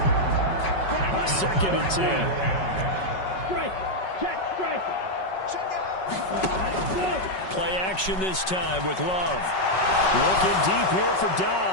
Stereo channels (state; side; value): late; right; 5.3 ms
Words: 2nd and 10. Play action this time with Love. Looking deep here for